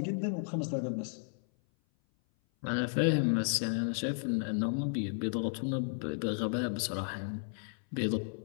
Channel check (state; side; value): silent; right; 55 dB below the other